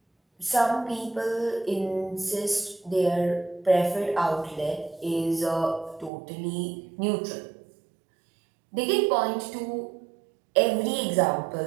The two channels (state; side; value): drops out; left; at 6.1 s